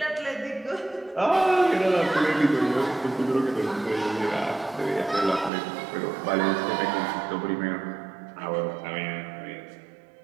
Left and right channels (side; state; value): left; drops out; at 5.5 s